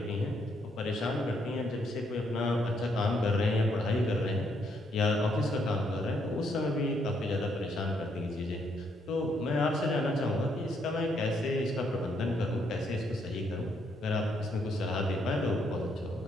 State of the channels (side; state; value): both; normal; correlation 0.73